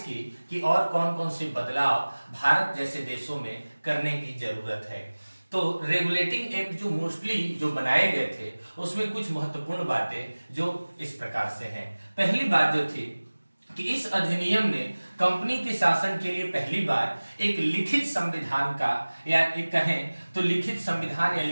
कि और कौन कौन से बदलाव भारत जैसे देशों में करने की जरूरत है। तो रेगुलेटिंग एक्ट जो मोस्टली जो बनाए गए थे, उसमें कुछ महत्वपूर्ण बातें जो इस प्रकार से हैं। पहली बात जो थी कि इस अधिनियम ने कंपनी के शासन के लिए पहली बार एक लिखित संविधान का या एक कहें तो लिखित संविधान या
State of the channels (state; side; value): inverted; both; correlation -1.00